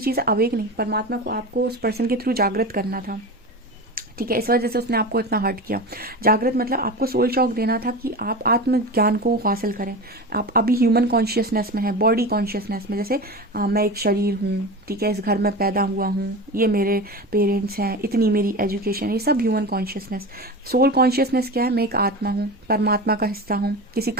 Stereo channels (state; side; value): normal; both; correlation 0.27